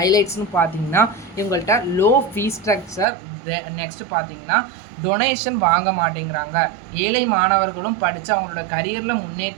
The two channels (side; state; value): left; drops out; at 3.1 s